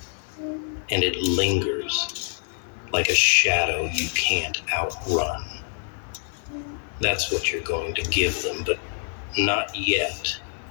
and it lingers like a shadow you can't outrun. That's what you're going to give them, but not yet.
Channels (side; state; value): right; silent; 61 dB below the other